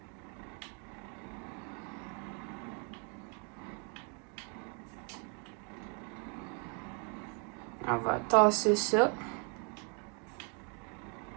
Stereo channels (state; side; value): quieter; left; 37.5 dB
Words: On va tasser ça.